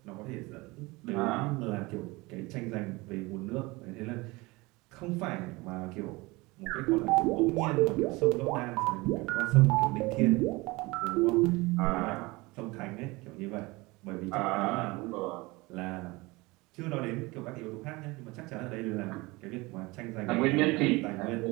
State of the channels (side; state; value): left; quieter; 23.2 dB